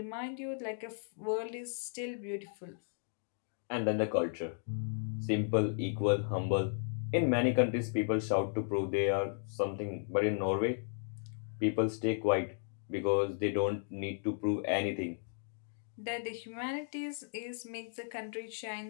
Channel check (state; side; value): silent; right; digital silence